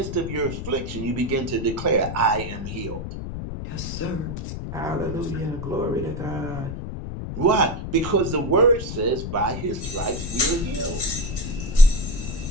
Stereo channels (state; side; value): noise; left; rumble, 6 dB below the sound